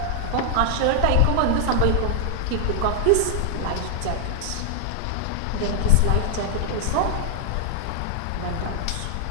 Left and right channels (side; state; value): both; different; correlation 0.00